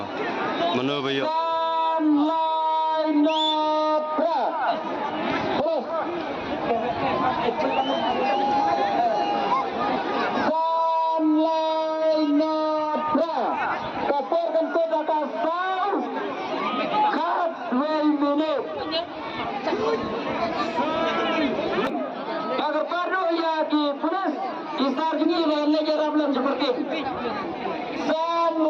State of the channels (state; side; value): identical; both; correlation 1.00